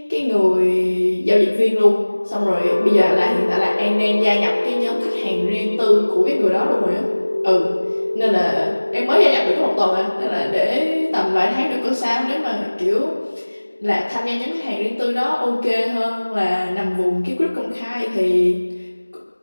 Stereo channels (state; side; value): inverted; both; correlation -1.00